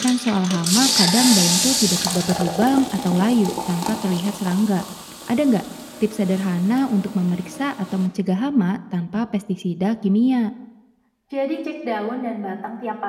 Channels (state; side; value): identical; both; correlation 1.00